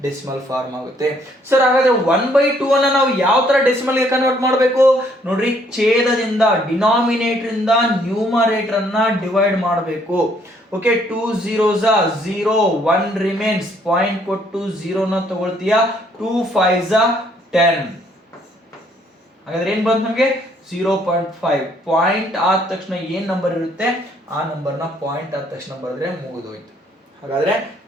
ಡೆಸಿಮಲ್ ಫಾರ್ಮ್ ಆಗುತ್ತೆ. ಸರ್, ಹಾಗಾದ್ರೆ 1/2 ಅನ್ನ ನಾವು ಯಾವ ತರ ಡೆಸಿಮಲ್ ಗೆ ಕನ್ವರ್ಟ್ ಮಾಡಬೇಕು ನೋಡ್ರಿ? ಛೇದದಿಂದ, ಡಿನಾಮಿನೇಟರ್ ಇಂದ ನ್ಯೂಮರೇಟರ್ ಅನ್ನ ಡಿವೈಡ್ ಮಾಡಬೇಕು. Okay, 2 zeros 0, 1 remains. ಪಾಯಿಂಟ್ ಕೊಟ್ಟು 0 ನ ತಗೊಳ್ತೀಯಾ, 2 5s 10. ಹಾಗಾದ್ರೆ ಏನ್ ಬಂತು ನಮಗೆ? 0.5. ಪಾಯಿಂಟ್ ಆದ ತಕ್ಷಣ ಏನ್ ನಂಬರ್ ಇರುತ್ತೆ ಆ ನಂಬರ್ನ ಪಾಯಿಂಟ್ ಆದ ತಕ್ಷಣ ಬರೆದ್ರೆ ಮುಗಿದೋಯ್ತು. ಹಾಗಾದ್ರೆ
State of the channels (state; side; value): normal; both; correlation 0.66